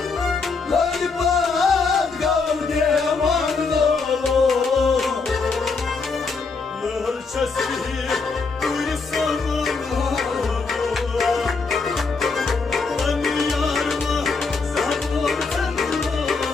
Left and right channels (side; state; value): right; quieter; 4.5 dB